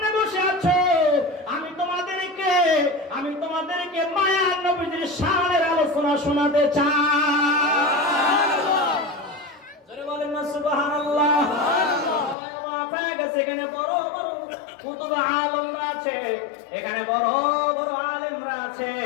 বসে আছো, আমি তোমাদেরকে মায়ার নবীজির শানের আলোচনা শোনাতে চাই। জোরে বলেন না সুবহানাল্লাহ। এখানে বড় বড় কুতুব আলেমরা আছে, এখানে বড় বড় আলেমরা আছে।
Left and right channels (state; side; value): drops out; right; at 12.4 s